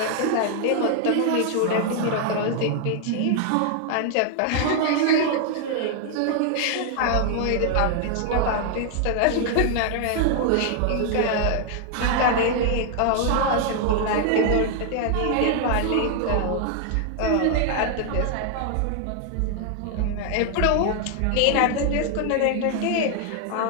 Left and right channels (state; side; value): different; both; correlation 0.00